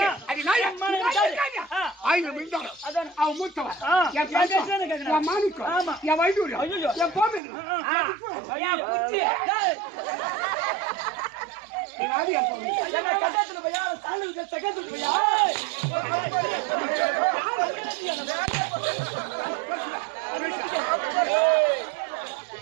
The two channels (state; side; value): drops out; left; at 7.4 s